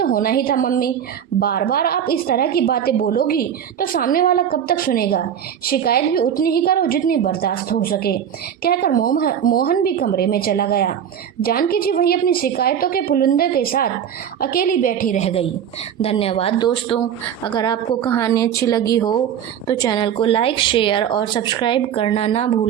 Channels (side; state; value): left; quieter; 9.0 dB